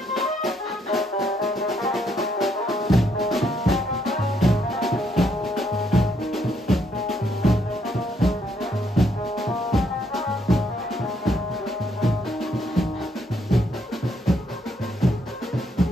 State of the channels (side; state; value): both; normal; correlation 0.73